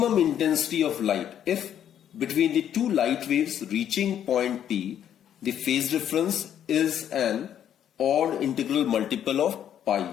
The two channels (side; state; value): right; quieter; 9.9 dB